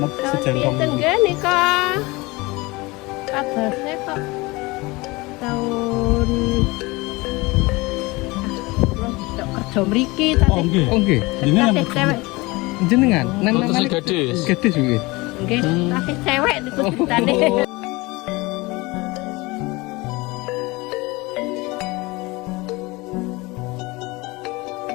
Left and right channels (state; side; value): quieter; right; 23.4 dB